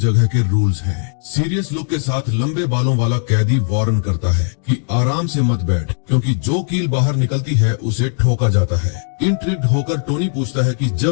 के रूल्स हैं। सीरियस लुक के साथ लंबे बालों वाला कैदी वार्न करता है कि आराम से मत बैठ, क्योंकि जो कील बाहर निकलती है उसे ठोका जाता है। इंट्रिग्ड होकर टोनी पूछता है कि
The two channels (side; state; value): right; silent; digital silence